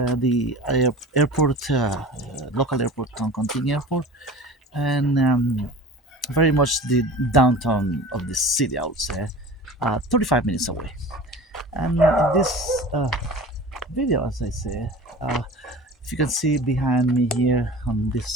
airport, local airport, Toncontin Airport, and very much the downtown of the city, I would say, 35 minutes away. And in this video, as I say, if you can see behind me here on this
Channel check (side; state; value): both; normal; correlation 0.38